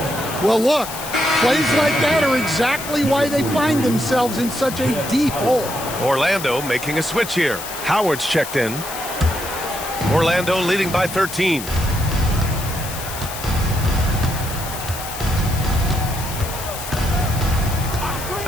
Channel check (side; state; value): left; noise; hiss, 9 dB below the sound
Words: Well, look, plays like that are exactly why they find themselves in such a deep hole. Orlando making a switch here. Howard's checked in. Orlando leading by 13.